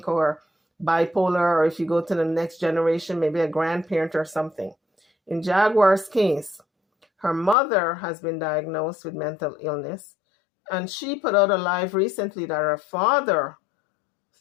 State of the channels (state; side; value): drops out; right; at 7.6 s